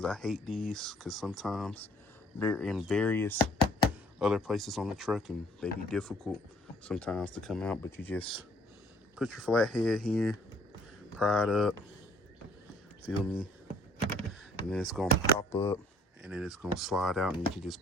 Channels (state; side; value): normal; both; correlation 0.60